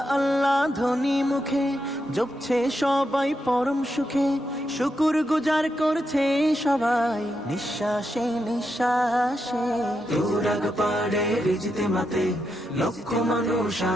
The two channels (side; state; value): both; normal; correlation 0.84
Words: আল্লাহ ধ্বনি মুখে জপছে সবাই পরম সুখে, শুকুর গুজার করছে সবাই নিঃশ্বাসে নিঃশ্বাসে। তুরাগ পাড়ে রিজতে মাতে লক্ষ মানুষ